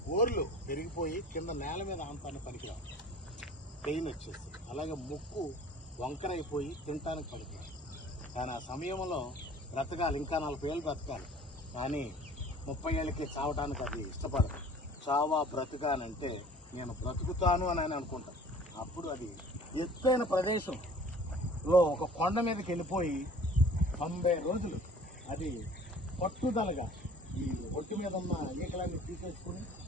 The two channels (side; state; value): both; normal; correlation 0.48